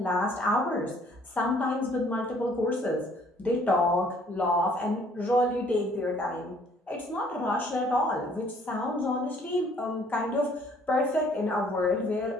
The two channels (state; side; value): normal; both; correlation 0.60